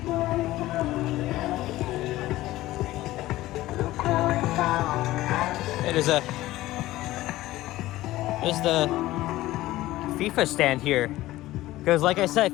There's the FIFA stand here. Because like I said,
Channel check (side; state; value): right; quieter; 16.5 dB